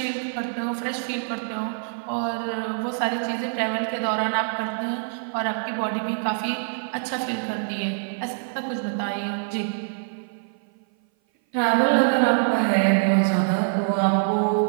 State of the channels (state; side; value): silent; left; 57 dB below the other